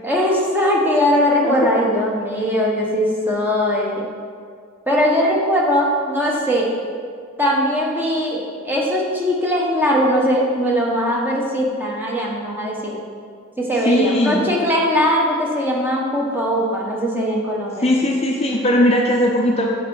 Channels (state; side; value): normal; both; correlation 0.41